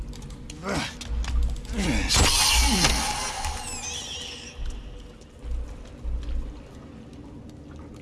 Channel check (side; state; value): both; identical; correlation 1.00